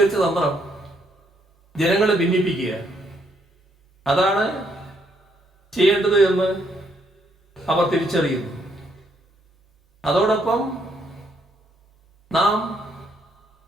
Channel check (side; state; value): both; normal; correlation 0.72